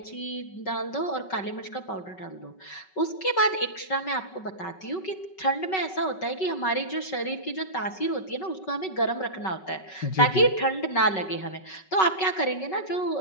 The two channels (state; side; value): late; right; 5.3 ms